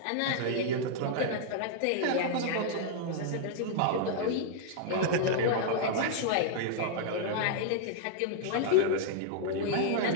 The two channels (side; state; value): both; different; correlation -0.01